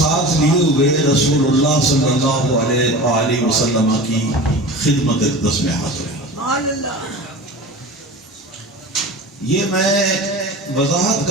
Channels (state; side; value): normal; both; correlation 0.34